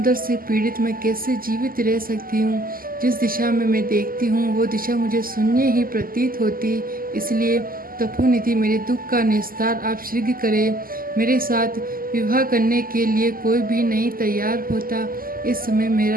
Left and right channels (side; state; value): left; late; 0.42 ms